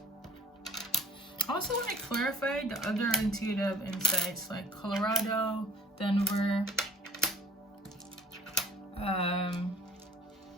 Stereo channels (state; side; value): normal; both; correlation 0.52